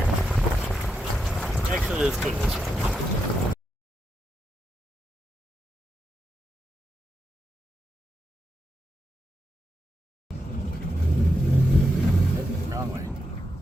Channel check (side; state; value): both; normal; correlation 0.85